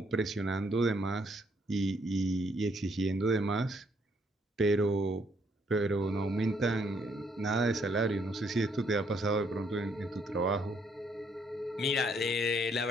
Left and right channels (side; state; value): both; normal; correlation 0.70